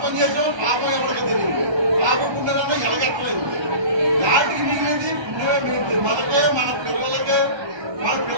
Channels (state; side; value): late; left; 1.3 ms